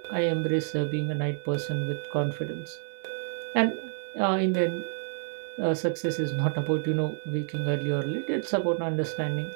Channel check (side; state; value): left; silent; digital silence